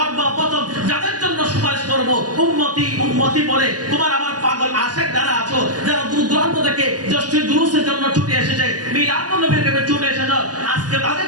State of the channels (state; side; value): late; left; 0.68 ms